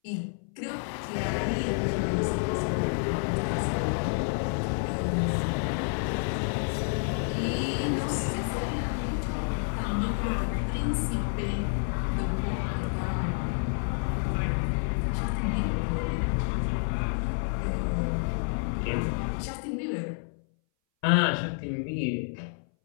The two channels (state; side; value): silent; right; 58 dB below the other